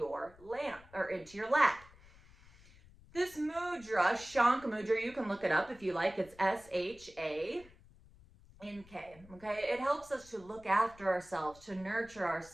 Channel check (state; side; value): noise; left; rumble, 23 dB below the sound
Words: lap. This mudra, Shank Mudra, you can look it up if you like. It's SHANK. Okay, it helps us to look after ourselves, to nurture